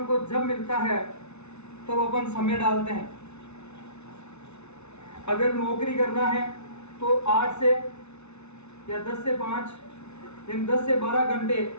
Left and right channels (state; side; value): late; right; 0.81 ms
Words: को जब मिलता है तब तो अपन समय डालते हैं। अगर नौकरी करना है तो 8 से या 10 से 5 इन 10 से 12 घंटे